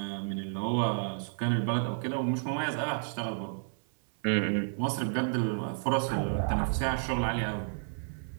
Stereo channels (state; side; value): silent; left; 57 dB below the other